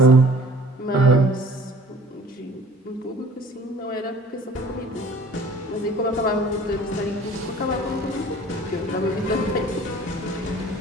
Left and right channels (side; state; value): both; normal; correlation 0.49